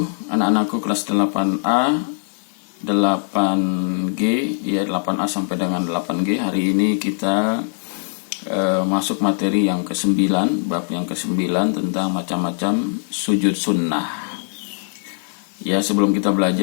Anak-anakku kelas 8A, 8G, ya 8A sampai dengan 8G. Hari ini kita masuk materi yang ke-9, bab yang ke-9 tentang macam-macam sujud sunnah. Ya, sebelum kita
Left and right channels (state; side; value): silent; right; digital silence